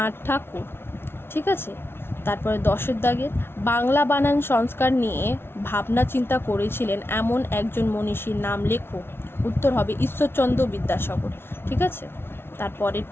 ঠাকুর। ঠিক আছে, তারপরে 10-এর দাগের বাংলা বানান সংস্কার নিয়ে ভাবনা চিন্তা করেছিলেন এমন একজন মনীষীর নাম লেখো। উত্তর হবে ঈশ্বরচন্দ্র বিদ্যাসাগর। ঠিক আছে, তারপরের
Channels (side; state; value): right; late; 0.11 ms